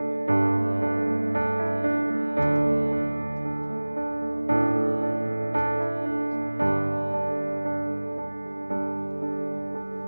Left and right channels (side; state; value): both; inverted; correlation -1.00